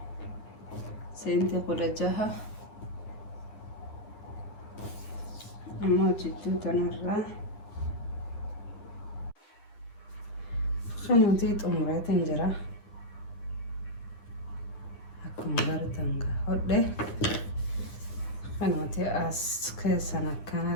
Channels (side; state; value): right; late; 9.7 ms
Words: سنتي قلجها أما جدو تنرى قنوتي أموري تنجرى أكما قرتن قهده قنوتي أسكي سنة